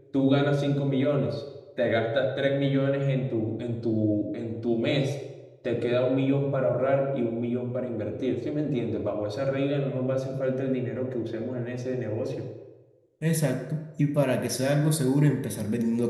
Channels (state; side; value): identical; both; correlation 1.00